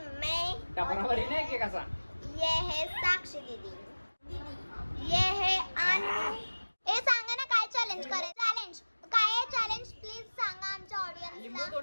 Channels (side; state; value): both; inverted; correlation -1.00